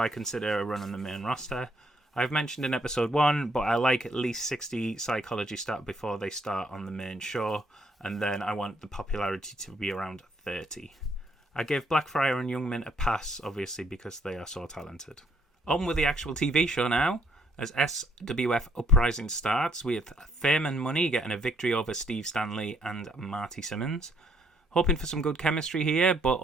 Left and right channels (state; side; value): normal; both; correlation 0.68